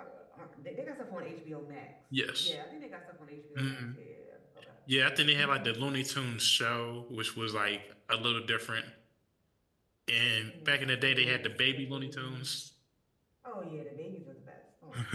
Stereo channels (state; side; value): identical; both; correlation 1.00